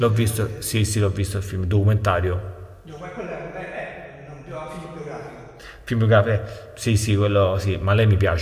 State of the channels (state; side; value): identical; both; correlation 1.00